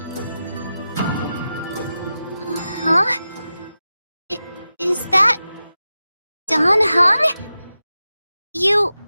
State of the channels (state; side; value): inverted; both; correlation -0.92